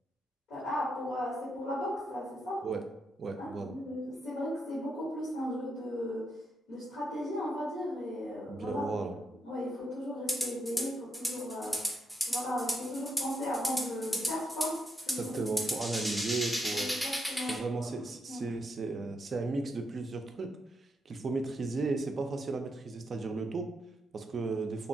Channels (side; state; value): both; normal; correlation 0.80